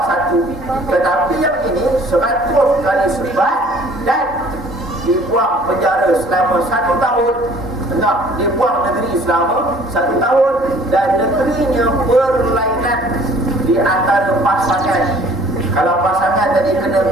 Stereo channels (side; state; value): both; normal; correlation 0.53